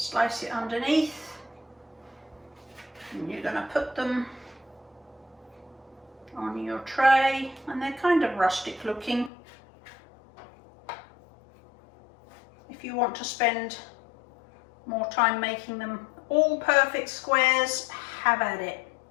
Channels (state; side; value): drops out; right; at 9.3 s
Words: it underneath, and you're going to put them on your tray, and they're kind of rustic looking. If you want to spend more time making them all perfect squares, have at it.